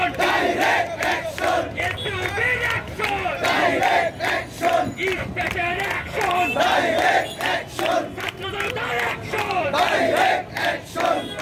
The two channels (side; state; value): both; identical; correlation 1.00